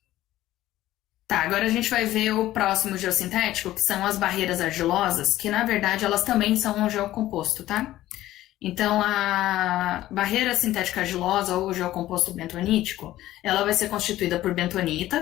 Tá, agora a gente vai ver o próximo geossintético, que são as barreiras argilosas, que na verdade elas também são um geocomposto, tá? Então a barreira sintética argilosa ou geocomposto bentonítico, ela vai ser constituída por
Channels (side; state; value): right; quieter; 14.8 dB